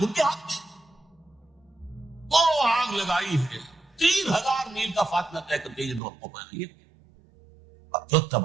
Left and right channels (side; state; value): left; drops out; at 6.0 s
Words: کے ہاتھ۔ وہ آگ لگائی ہے، 3000 میل کا فاصلہ طے کر کے یہ دور کو پہنچی، جو